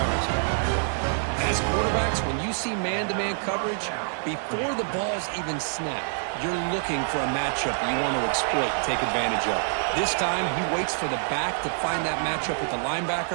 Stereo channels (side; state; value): left; silent; digital silence